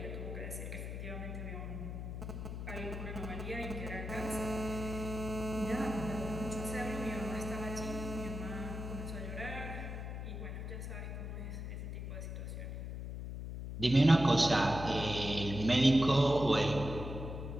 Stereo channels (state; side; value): noise; left; hum, 6 dB below the sound